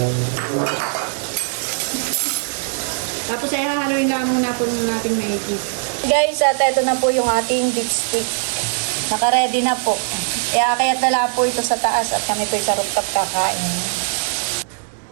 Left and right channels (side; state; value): left; silent; digital silence